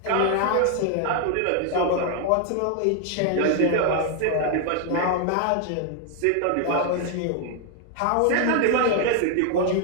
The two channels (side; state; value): both; different; correlation 0.00